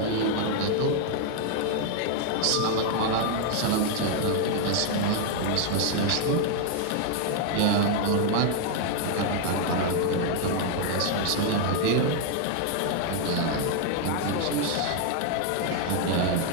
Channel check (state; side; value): different; both; correlation 0.00